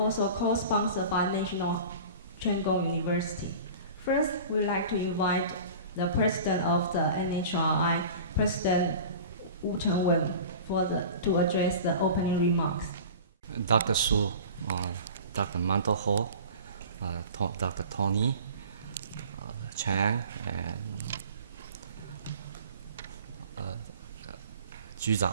co-sponsored by National Cheng Kung University. First, we'd like to invite the president of the NHRI, President Wu-Cheng Wen, to address the opening remarks. Dr. Su, Dr. Manto Ho, Dr. Tony Chang, and Ju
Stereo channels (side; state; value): both; inverted; correlation -0.39